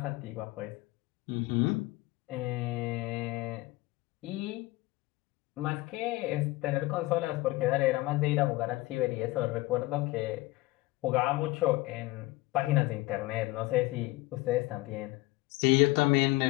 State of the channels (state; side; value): quieter; right; 20.0 dB